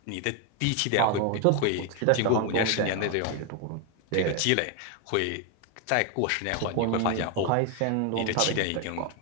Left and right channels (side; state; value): both; different; correlation 0.01